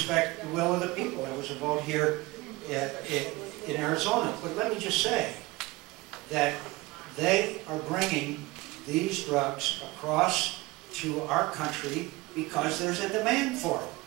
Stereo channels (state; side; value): quieter; left; 21.7 dB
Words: the will of the people. There was a vote here in Arizona. But let me just say that they are bringing these drugs across to our country because there's a demand for